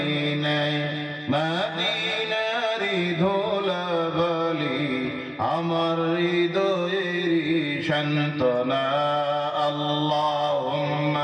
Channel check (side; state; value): both; identical; correlation 1.00